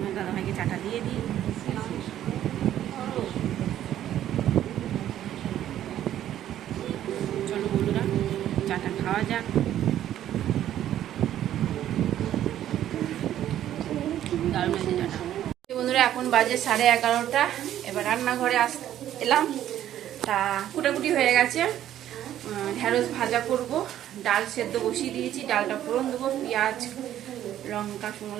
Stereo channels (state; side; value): quieter; left; 11.8 dB